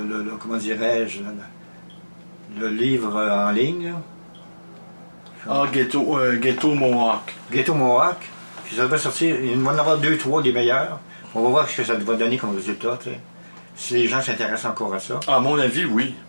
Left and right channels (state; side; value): inverted; both; correlation -1.00